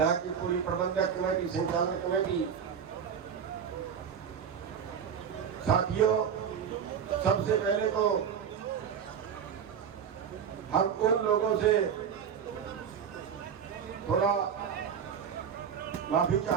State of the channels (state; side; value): quieter; left; 7.6 dB